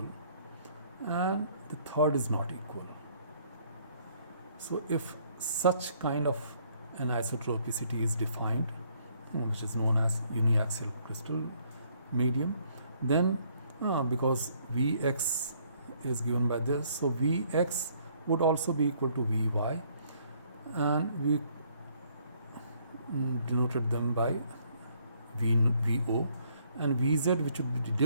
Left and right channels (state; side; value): inverted; both; correlation -0.65